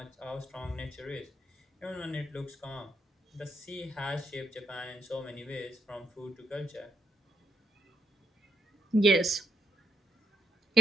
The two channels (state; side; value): normal; both; correlation 0.77